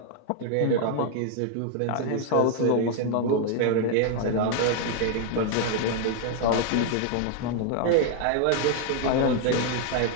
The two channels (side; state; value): both; different; correlation 0.00